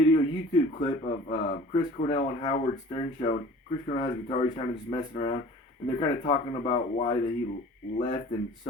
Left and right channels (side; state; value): both; normal; correlation 0.45